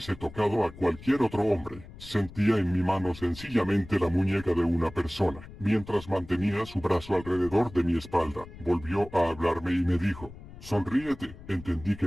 tocado a cualquier otro hombre. Sentía en mi mano sencillamente la muñeca de una persona. Mientras mantenía su brazo alrededor de mi espalda, volvió a hablarme y me dijo: sonríete. Entendí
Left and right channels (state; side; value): noise; left; rumble, 17 dB below the sound